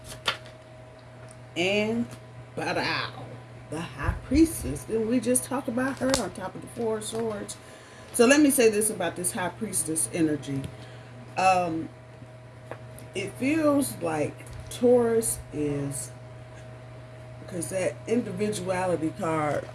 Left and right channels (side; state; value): both; identical; correlation 1.00